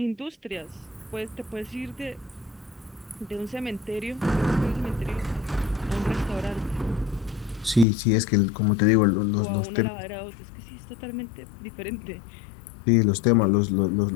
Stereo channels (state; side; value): drops out; right; at 7.9 s